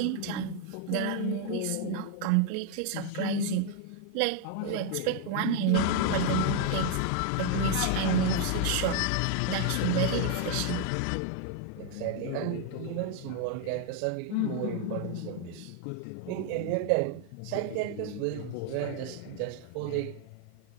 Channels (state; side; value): different; both; correlation 0.00